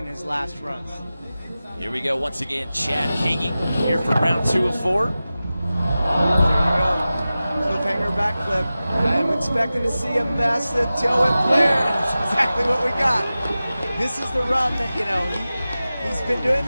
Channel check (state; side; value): inverted; both; correlation -0.95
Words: in his last runs. Here we go once again, Chad Kagy here for round 2 of 4. There you go. Cliffhanger backflip. I'm expecting to see a massive tail whip flare. That's exactly what we got. This is the run that, you know, he's been doing